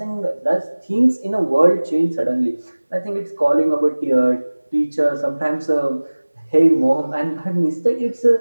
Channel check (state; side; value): inverted; both; correlation -1.00